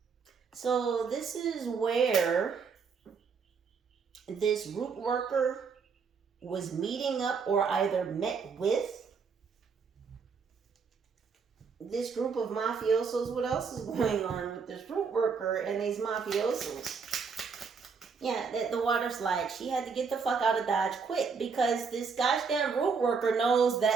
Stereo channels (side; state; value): left; quieter; 5.5 dB